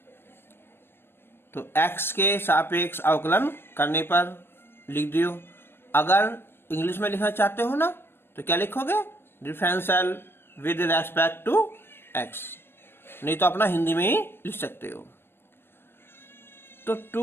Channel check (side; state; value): right; late; 0.11 ms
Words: तो x के सापेक्ष अवकलन करने पर लिख दियो। अगर इंग्लिश में लिखना चाहते हो ना, तो क्या लिखोगे, differential with respect to x, नहीं तो अपना हिंदी में ही लिख सकते हो। तो